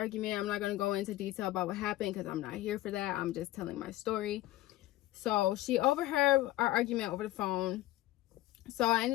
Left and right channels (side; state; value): right; quieter; 16.2 dB